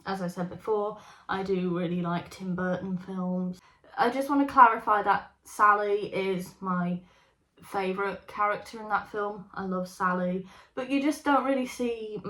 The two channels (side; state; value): both; identical; correlation 1.00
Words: As I said before, I do really like Tim Burton films. I just want to clarify that Sally is my favourite character in that film. I love Sally, but you just don't really see